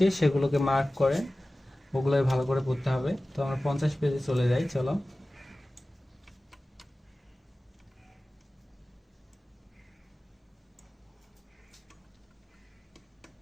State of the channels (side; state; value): both; normal; correlation 0.96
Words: সেগুলোকে মার্ক করেন, ওগুলোই ভালো করে পড়তে হবে। তো আমরা 50 পেজে চলে যাই, চলো।